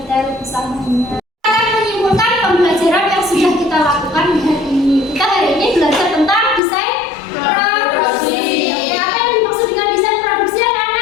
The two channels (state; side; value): drops out; right; at 6.6 s